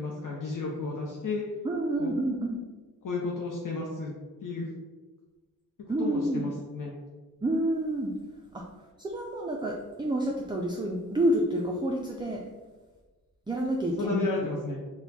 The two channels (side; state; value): both; normal; correlation 0.55